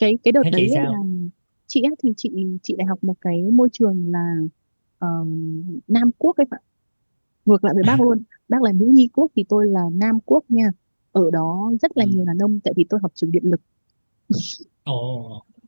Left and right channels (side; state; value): both; inverted; correlation -1.00